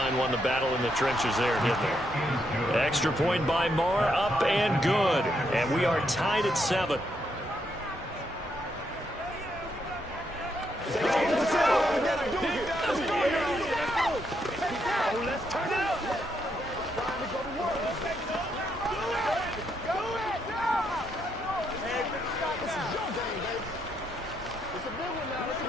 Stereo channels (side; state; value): both; normal; correlation 0.77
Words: won the battle in the trenches there, didn't they? Extra point by Moore, up and good. And we are tied at 7.